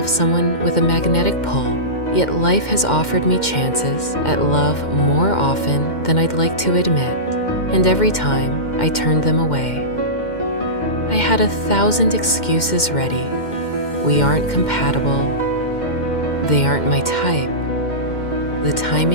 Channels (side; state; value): right; late; 2.1 ms